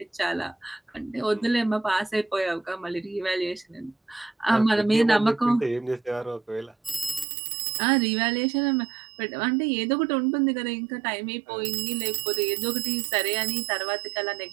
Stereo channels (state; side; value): drops out; left; at 7.2 s